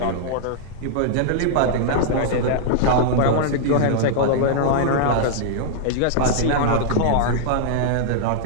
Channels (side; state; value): both; different; correlation -0.01